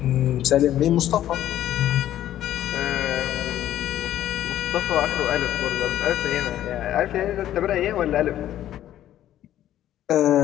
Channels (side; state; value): right; quieter; 12.3 dB